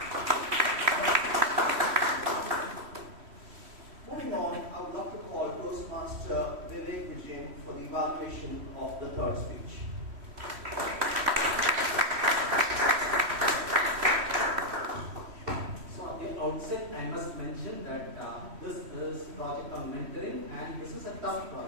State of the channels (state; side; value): late; left; 3.1 ms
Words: Moving on, I would love to call Toastmaster Vijay for the evaluation of the third speech. Outset, I must mention that this is project on mentoring, and this is a tough